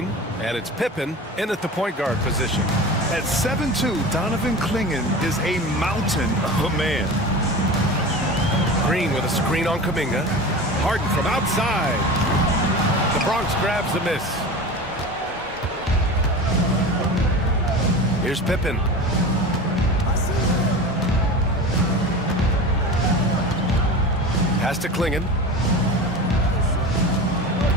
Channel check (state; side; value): normal; both; correlation 0.31